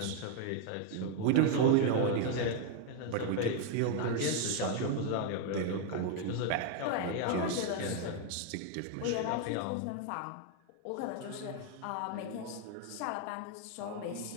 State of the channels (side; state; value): both; different; correlation 0.01